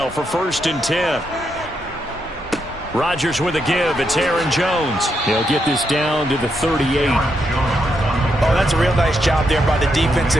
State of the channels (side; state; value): both; normal; correlation 0.81